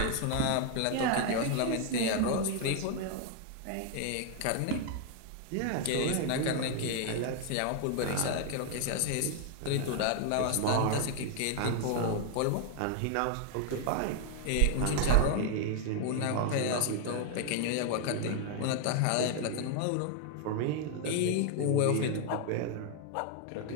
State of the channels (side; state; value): both; different; correlation 0.00